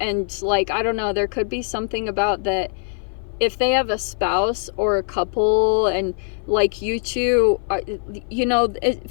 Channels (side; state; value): right; silent; 57 dB below the other